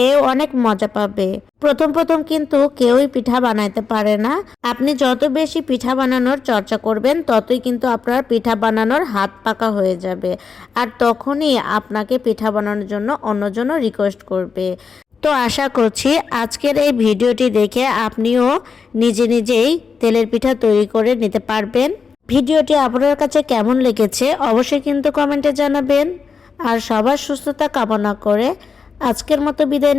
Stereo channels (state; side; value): quieter; right; 5.5 dB